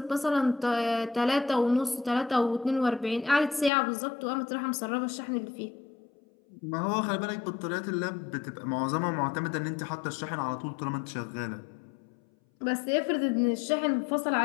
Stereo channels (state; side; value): drops out; right; at 3.7 s